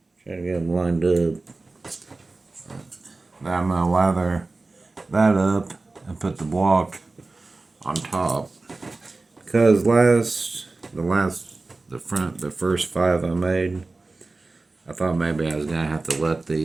Try to get them lined up. Now I'm gonna lather that up and put the block on top. Because the first 5 I made, I thought maybe I was gonna have to let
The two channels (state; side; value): quieter; left; 3.4 dB